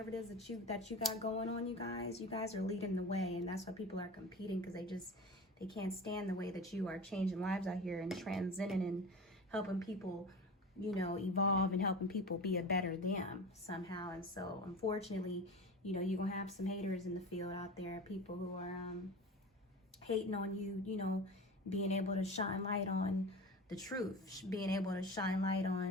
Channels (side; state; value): both; normal; correlation 0.32